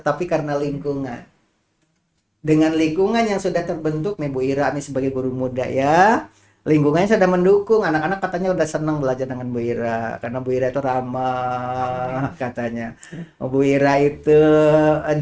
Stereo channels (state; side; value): identical; both; correlation 1.00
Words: karena lingkungan. Dengan lingkungan yang sudah terbentuk nih Bu Ira nih sebagai guru muda ya, lingkungannya sudah mendukung, anak-anak katanya udah senang belajar dengan Bu Ira karena Bu Ira itu ramah katanya. Bu Ira itu